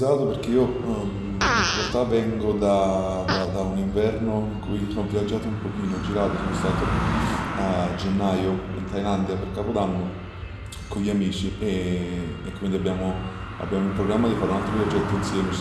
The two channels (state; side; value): identical; both; correlation 1.00